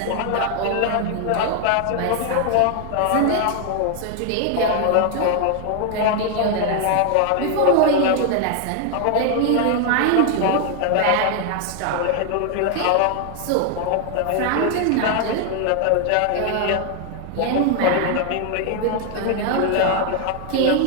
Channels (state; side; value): different; both; correlation 0.00